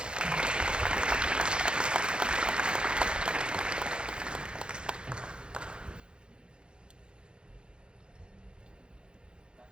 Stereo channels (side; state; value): left; late; 0.051 ms